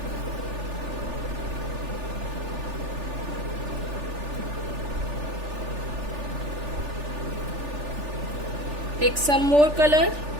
Take some more color.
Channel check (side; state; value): left; late; 3.4 ms